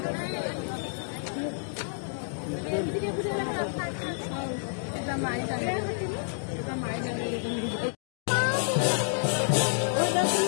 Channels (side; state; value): right; silent; digital silence